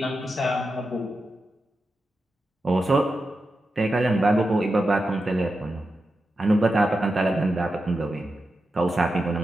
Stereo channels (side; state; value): both; normal; correlation 0.90